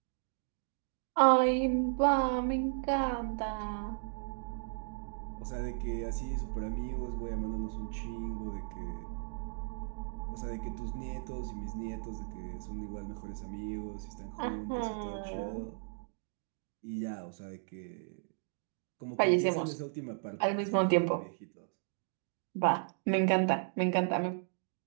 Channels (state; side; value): silent; left; digital silence